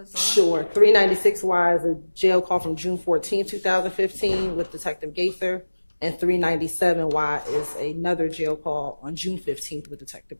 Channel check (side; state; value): both; inverted; correlation -1.00